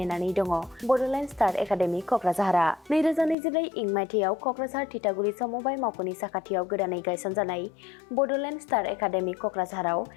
दङ बड'लेण्ड स्टार एकाडेमि क'क्राझारआ। 2024 इं मायथाइयाव क'क्राझार थिथागुरि समबाय मावख'नि साखाथियाव गोदानै गायसनजानाय बड'लेण्ड स्टार एकाडेमि क'क्राझाराव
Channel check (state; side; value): drops out; right; at 3.4 s